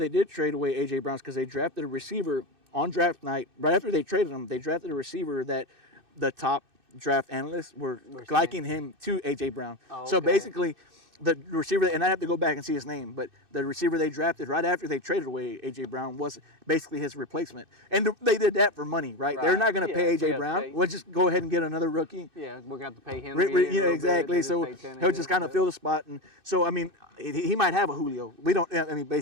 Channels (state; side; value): late; left; 2.6 ms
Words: did trade away A.J. Brown is because they drafted a receiver on draft night. Right after they traded him, they drafted a receiver that the top draft analysts were liking him to A.J. Brown. Oh, So okay. basically, the receiver, and I have to go back and see his name, but the receiver they drafted right after they traded away A.J. Brown was basically his replacement. And they did that for money, right? They're not going to pay A.J. Brown. Pay. We'll just go ahead and get another rookie. Yeah, we're going to have to pay him. Exactly. So he'll just kind of fill the spot. And so, I mean, he might have a Julio. We don't, I mean,